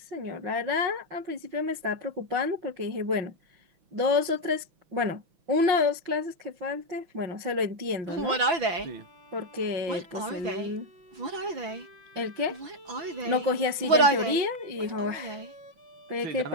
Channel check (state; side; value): late; left; 6.0 ms